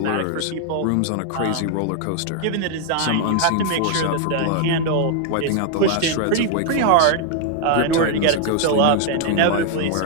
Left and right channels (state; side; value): different; both; correlation 0.00